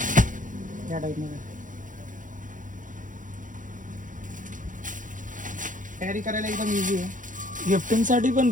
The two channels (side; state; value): left; late; 0.38 ms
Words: या टाईपमध्ये. कॅरी करायला एकदम इझी आहे. गिफ्टिंगसाठी पण